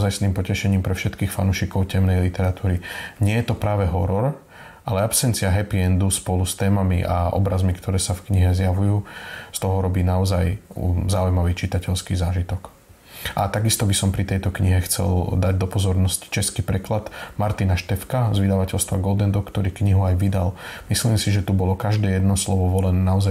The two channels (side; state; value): both; identical; correlation 1.00